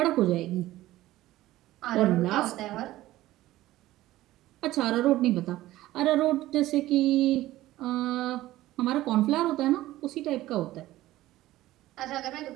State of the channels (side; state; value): left; quieter; 15.9 dB